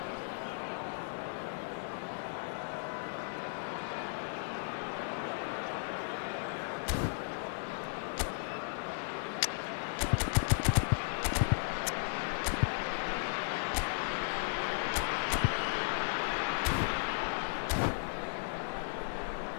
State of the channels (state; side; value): silent; right; digital silence